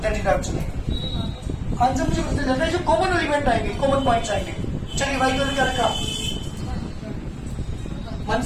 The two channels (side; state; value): both; identical; correlation 1.00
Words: दैट इज आंसर। आंसर मुझे पता चलता है जो कॉमन एलिमेंट आएंगे कॉमन पॉइंट्स आएंगे। चलिए y का क्या रखा